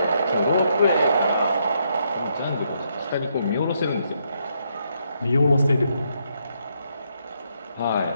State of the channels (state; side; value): inverted; both; correlation -0.76